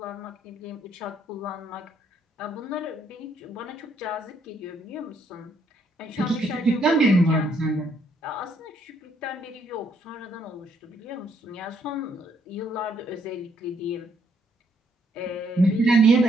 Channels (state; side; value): normal; both; correlation 0.70